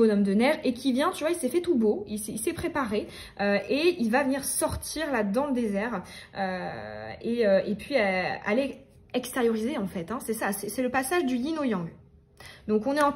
de neige, et qui vient, tu vois, il s'est fait tout beau, il s'est préparé, et il va venir sortir là dans le désert, et puis aller extérioriser en fait, hein, c'est ça, c'est le passage du yin au yang. Donc on est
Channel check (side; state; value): both; identical; correlation 1.00